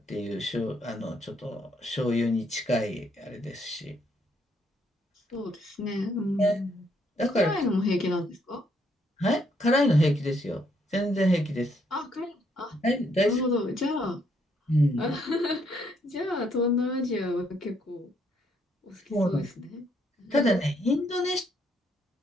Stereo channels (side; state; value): both; normal; correlation 0.72